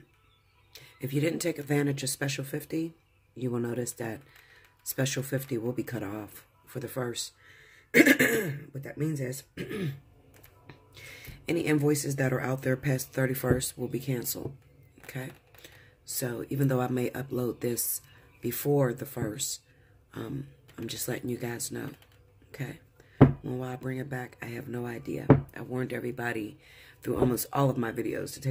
if you didn't take advantage of Special 50, you will notice that Special 50 will be cut off for the 1st. What that means is any invoices that are out there past 31st will be canceled. Okay? So even though I may upload this before the 1st, I'm just letting you guys know. Okay? When will I bring it back? I have no idea. I warned everybody through almost all of my videos to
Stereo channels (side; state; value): both; identical; correlation 1.00